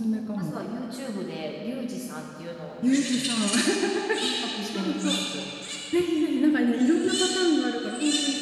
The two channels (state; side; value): identical; both; correlation 1.00